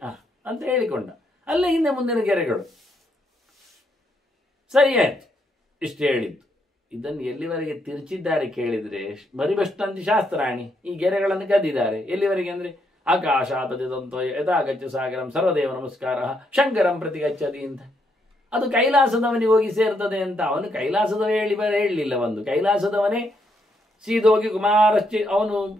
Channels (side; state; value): both; normal; correlation 0.76